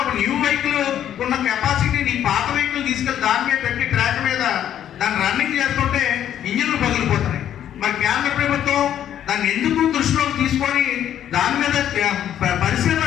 ఒక న్యూ వెహికల్ ఉన్న కెపాసిటీ నీ పాత వెహికల్ తీసుకెళ్లి దాని మీద పెట్టి ట్రాక్ మీద దాన్ని రన్నింగ్ చేస్తుంటే ఇంజిన్లు పగిలిపోతున్నాయి. మరి కేంద్ర ప్రభుత్వం దాన్ని ఎందుకు దృష్టిలోకి తీసుకొని దాని మీద పరిశీలన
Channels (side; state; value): right; quieter; 10.5 dB